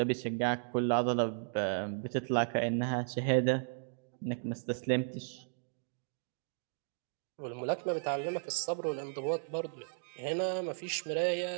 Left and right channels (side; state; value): left; silent; digital silence